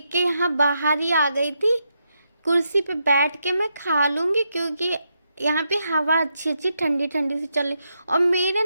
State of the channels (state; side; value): inverted; both; correlation -0.82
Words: यहाँ बाहर ही आ गई थी, कुर्सी पे बैठ के मैं खा लूँगी, क्योंकि यहाँ पे हवा अच्छी अच्छी ठंडी ठंडी सी चल रही। और मेरे